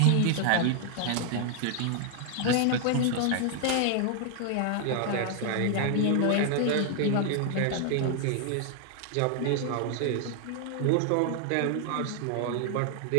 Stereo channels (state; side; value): different; both; correlation 0.00